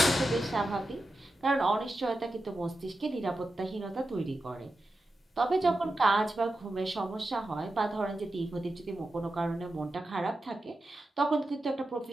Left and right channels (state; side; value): normal; both; correlation 0.91